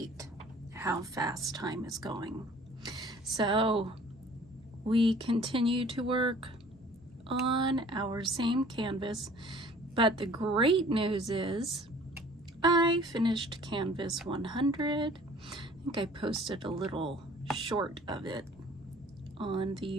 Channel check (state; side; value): normal; both; correlation 0.51